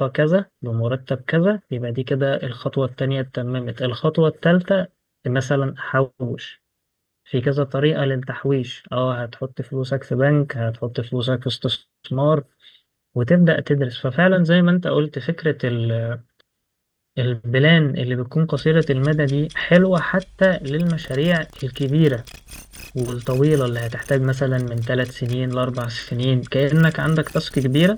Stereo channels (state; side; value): identical; both; correlation 1.00